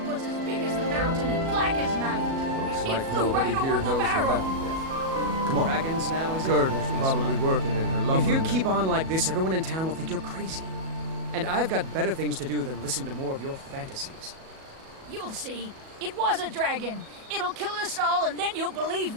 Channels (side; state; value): left; late; 37 ms